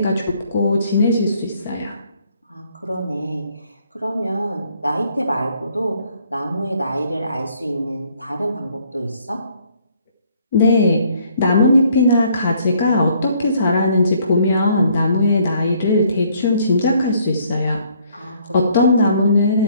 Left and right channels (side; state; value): both; inverted; correlation -0.64